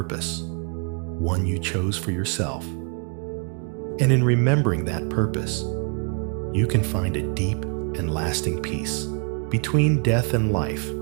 one you chose for yourself. And in remembering that purpose, you can find a deep and lasting peace between death and life.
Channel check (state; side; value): quieter; left; 37.9 dB